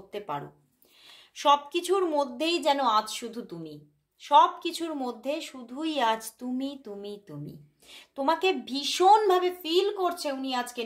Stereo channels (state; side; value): identical; both; correlation 1.00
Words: পারো। সব কিছুর মধ্যেই যেন আজ শুধু তুমি, সব কিছুর মধ্যে শুধুই আজ তুমি তুমি তুমি। তোমাকে ভীষণভাবে ফিল করছে উনি আজকে